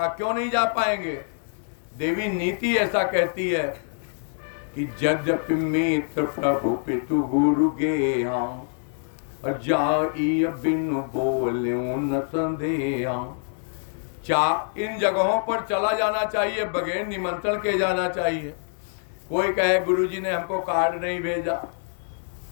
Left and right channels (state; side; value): silent; right; digital silence